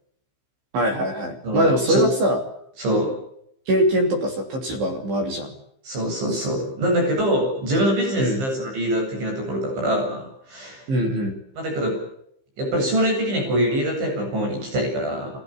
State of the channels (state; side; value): late; left; 15 ms